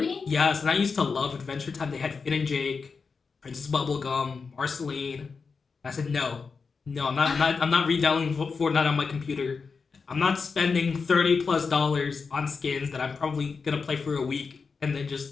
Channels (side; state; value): right; quieter; 5.0 dB